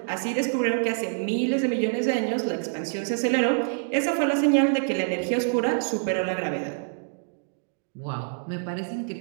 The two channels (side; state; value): left; silent; digital silence